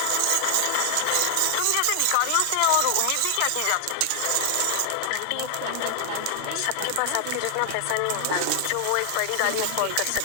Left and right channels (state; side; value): different; both; correlation 0.00